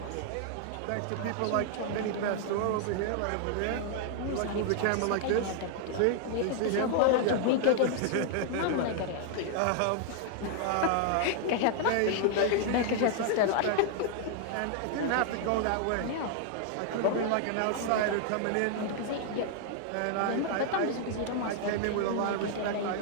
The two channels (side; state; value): both; different; correlation -0.01